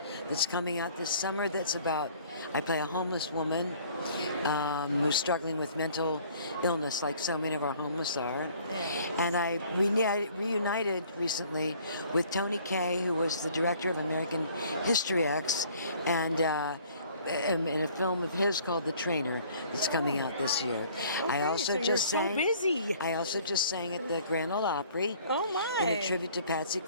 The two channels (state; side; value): inverted; both; correlation -0.55